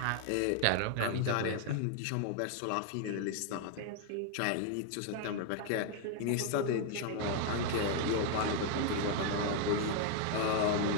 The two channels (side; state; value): both; different; correlation 0.00